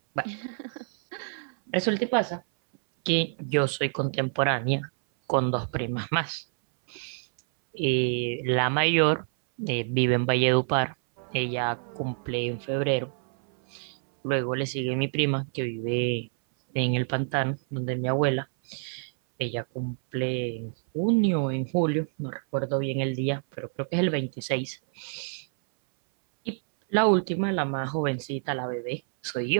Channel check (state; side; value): silent; left; 60 dB below the other